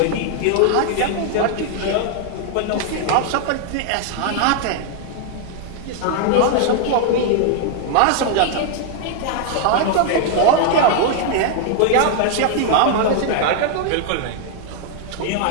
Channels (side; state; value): both; different; correlation 0.00